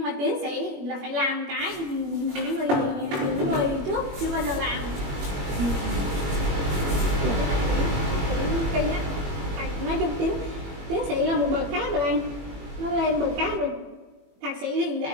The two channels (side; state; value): left; late; 21 ms